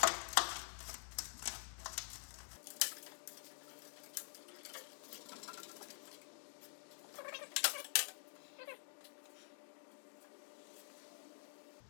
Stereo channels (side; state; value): right; silent; digital silence